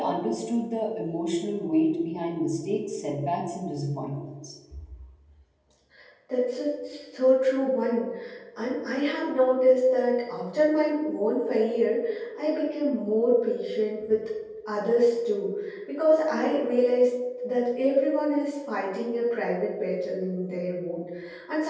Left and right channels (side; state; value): both; identical; correlation 1.00